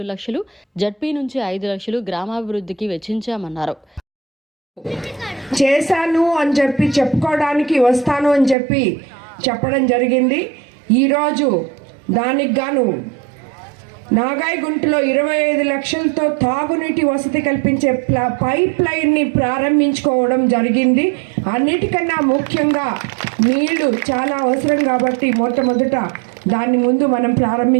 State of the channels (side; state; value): left; drops out; at 8.6 s